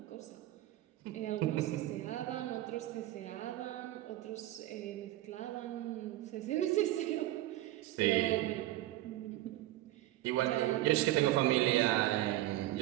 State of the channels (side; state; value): left; quieter; 15.5 dB